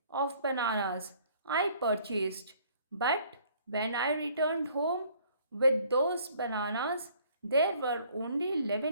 of bananas I purchased, but when I returned home with those bananas, there were only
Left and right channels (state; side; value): inverted; both; correlation -0.58